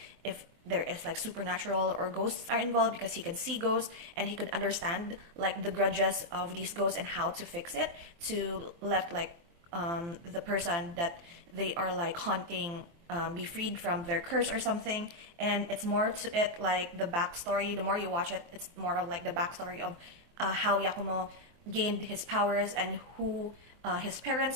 if there is like supernatural or ghosts are involved, because he can see ghosts and he could understand like the grudges of these ghosts and how to fix it to let like the person that they are like haunting be freed from their curse or something. And it's more to it like the backstory. The more you watch it, it's more of like the backstory of how Yakumo gained his powers and who his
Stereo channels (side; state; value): left; late; 23 ms